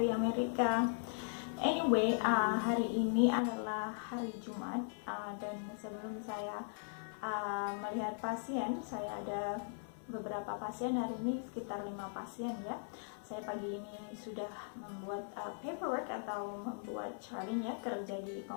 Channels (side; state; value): right; silent; 52 dB below the other